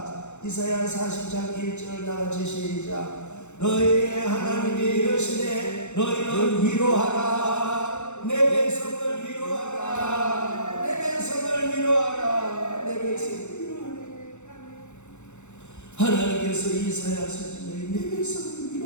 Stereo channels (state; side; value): late; right; 0.83 ms